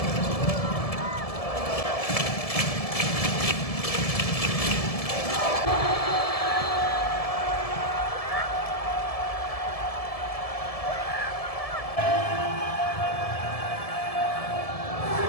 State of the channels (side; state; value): right; late; 1.7 ms